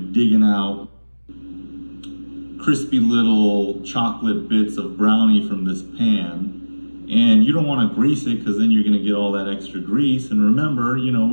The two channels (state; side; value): inverted; both; correlation -1.00